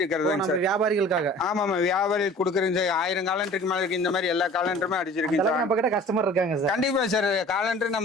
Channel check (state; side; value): normal; both; correlation 0.46